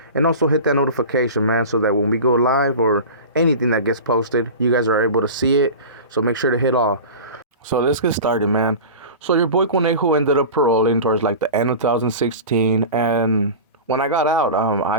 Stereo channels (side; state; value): both; inverted; correlation -0.32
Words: and also hit that notification, man, so that when we go live or anything that gets posted, you guys are able to see it. So make sure to hit all. So let's get started, man. So your boy Conejo ended up paroling towards like the end of 2016, and when I got out,